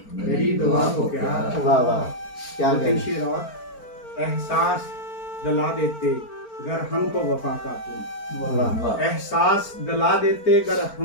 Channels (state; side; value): late; right; 4.4 ms